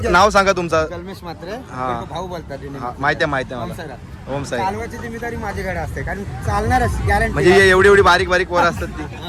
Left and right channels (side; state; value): both; identical; correlation 1.00